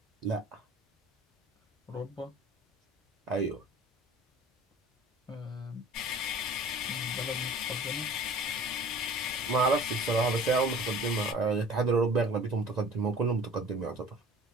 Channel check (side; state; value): both; normal; correlation 0.46